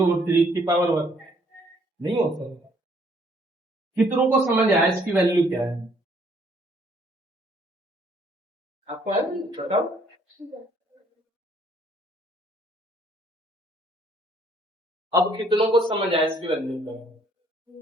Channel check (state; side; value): normal; both; correlation 0.64